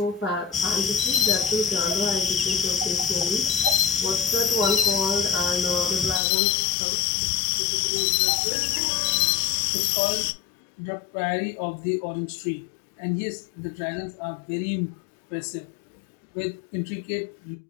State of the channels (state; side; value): drops out; right; at 6.2 s